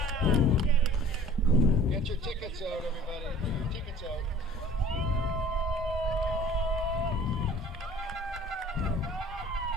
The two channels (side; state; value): both; normal; correlation 0.48